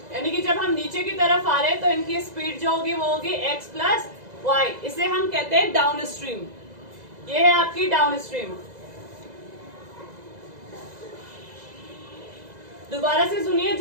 यानी कि जब हम नीचे की तरफ आ रहे हैं तो इनकी स्पीड जो होगी वो होगी x प्लस वाई. इसे हम कहते हैं डाउन स्ट्रीम. ये है आपकी डाउन स्ट्रीम. दोबारा से सुनिए.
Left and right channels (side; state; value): left; late; 2.0 ms